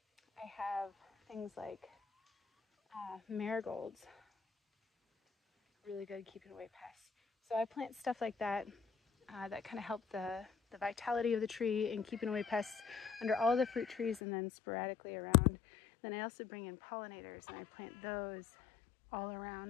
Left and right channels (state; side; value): drops out; right; at 14.2 s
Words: I have things like marigolds, really good at keeping away pests. So I plant stuff like that that kind of help the vitality of the tree and keeping away pests under all the fruit trees and then sporadically around. Then I also bring in pollinators, and I plant those all